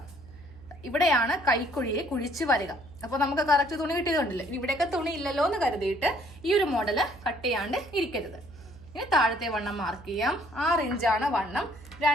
ഇവിടെയാണ് കൈക്കുഴിയെ കുഴിച്ച് വരിക. അപ്പോൾ നമുക്ക് കറക്റ്റ് തുണി കിട്ടിയതുകൊണ്ടില്ലേ. ഇവിടെയൊക്കെ തുണി ഇല്ലല്ലോ എന്ന് കരുതിയിട്ട് ഈ ഒരു മോഡല് കട്ട് ചെയ്യാണ്ട് ഇരിക്കരുത്. ഇനി താഴത്തെ വണ്ണം മാർക്ക് ചെയ്യാം. 6 ഇഞ്ചാണ് വണ്ണം.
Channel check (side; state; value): right; noise; hum, 20 dB below the sound